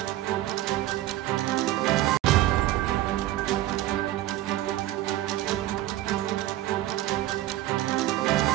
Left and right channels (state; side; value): quieter; left; 14.9 dB